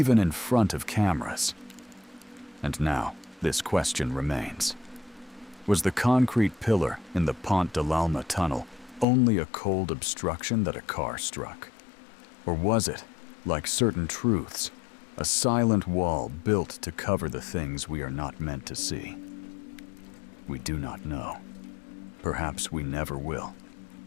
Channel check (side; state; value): right; drops out; at 9.1 s